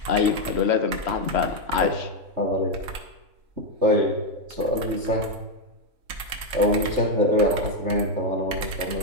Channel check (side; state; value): left; late; 4.0 ms